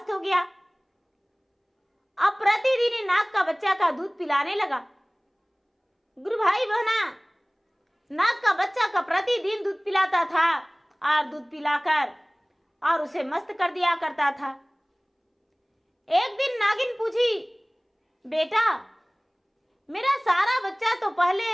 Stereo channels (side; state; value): both; identical; correlation 1.00